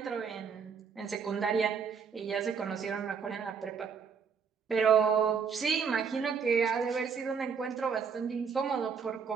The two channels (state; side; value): quieter; left; 6.3 dB